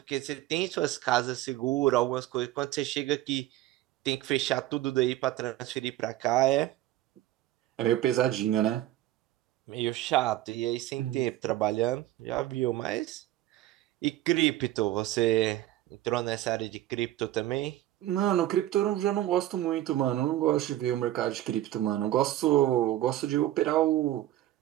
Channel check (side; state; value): left; quieter; 14.4 dB